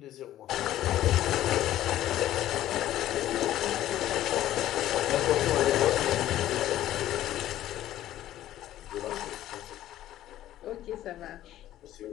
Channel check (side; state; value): right; quieter; 13.2 dB